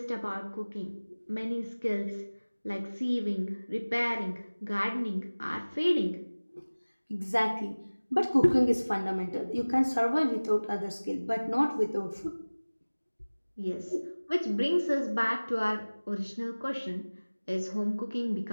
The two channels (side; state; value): both; inverted; correlation -1.00